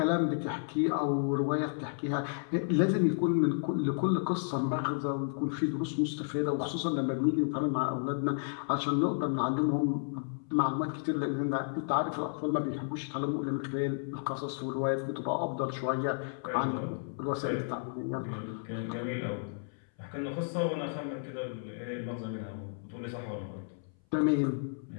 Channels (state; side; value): silent; right; 56 dB below the other